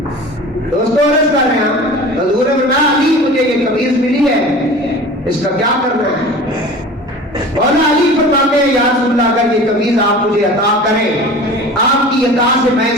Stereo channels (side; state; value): both; normal; correlation 0.38